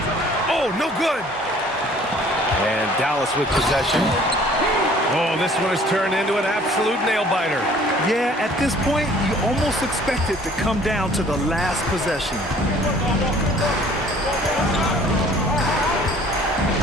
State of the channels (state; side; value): normal; both; correlation 0.54